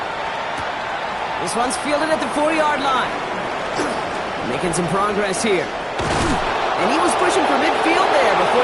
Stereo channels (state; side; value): identical; both; correlation 1.00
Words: This one's fielded at the 4-yard line. Making some progress here. And he was pushing for midfield there before